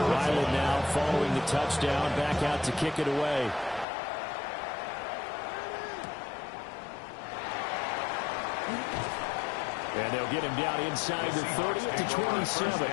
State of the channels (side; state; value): right; drops out; at 3.9 s